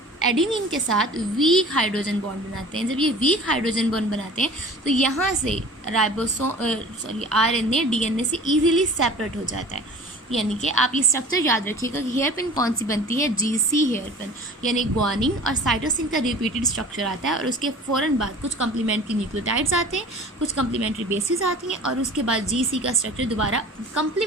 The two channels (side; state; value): both; normal; correlation 0.43